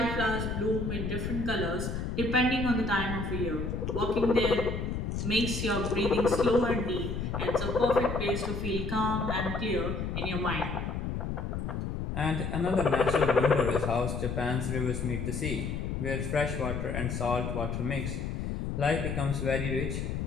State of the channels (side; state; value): left; noise; rumble, 3 dB below the sound